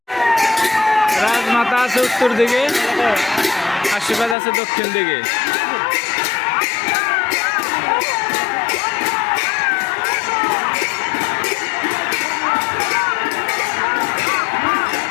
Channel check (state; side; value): drops out; right; at 4.4 s